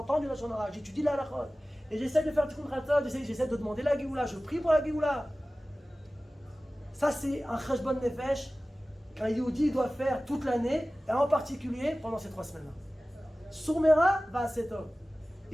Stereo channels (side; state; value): both; normal; correlation 0.97